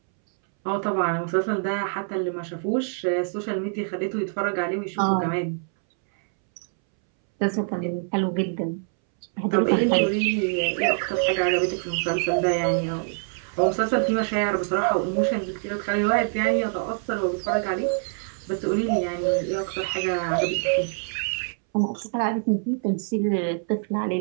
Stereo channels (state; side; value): silent; left; 62 dB below the other